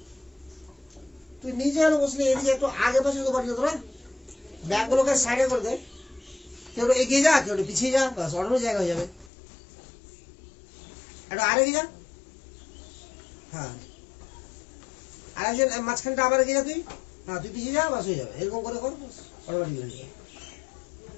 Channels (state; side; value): drops out; right; at 9.3 s